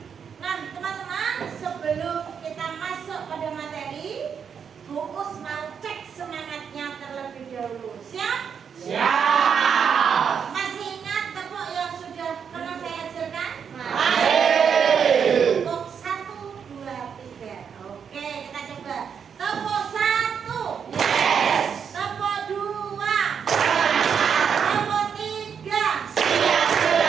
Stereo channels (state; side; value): quieter; left; 7.1 dB